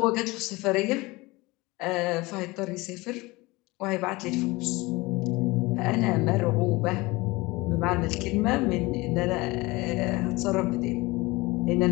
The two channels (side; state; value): right; quieter; 22.5 dB